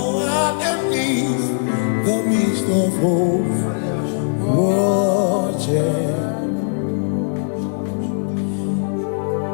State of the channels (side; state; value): right; silent; digital silence